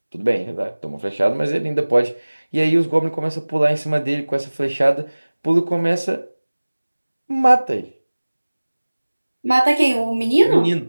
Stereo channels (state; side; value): inverted; both; correlation -1.00